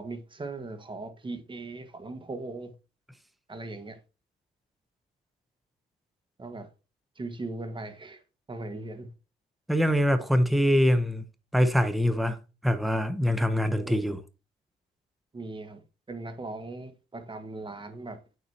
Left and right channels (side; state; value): both; normal; correlation 0.92